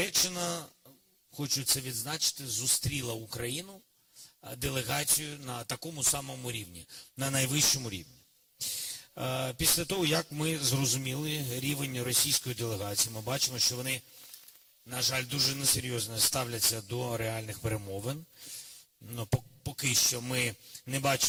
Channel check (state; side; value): identical; both; correlation 1.00